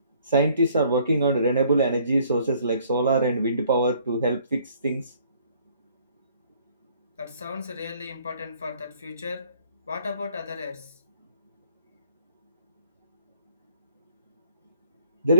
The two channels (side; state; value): both; inverted; correlation -0.61